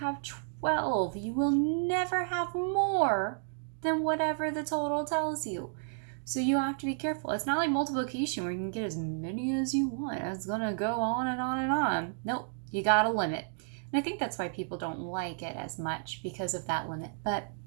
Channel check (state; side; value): silent; left; digital silence